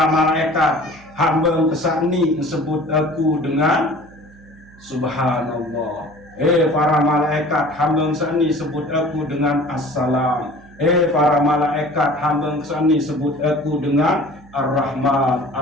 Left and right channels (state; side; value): noise; right; hum, 24 dB below the sound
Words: malaikat, hamba kesani sebut aku dengan Subhanallah. Para malaikat, hamba kesani sebut aku dengan Assalam. Para malaikat, hamba kesani sebut aku dengan Ar-Rahman,